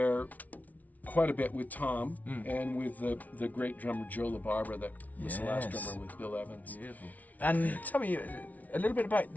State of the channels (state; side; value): late; right; 0.074 ms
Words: quite a bit with Tom and with the great drummer Joe LaBarbera that was the last Yes. drummer with Bill Evans. Beautiful. And tell me a little bit about